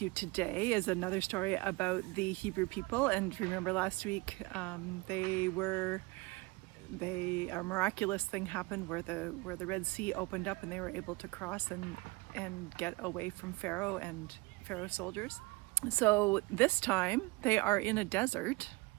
you today is another story about the Hebrew people. And remember last week, a miraculous thing happened where the Red Sea opened up and they were able to cross and get away from Pharaoh and Pharaoh's soldiers. So this time they are in a desert.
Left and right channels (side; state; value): left; quieter; 24.0 dB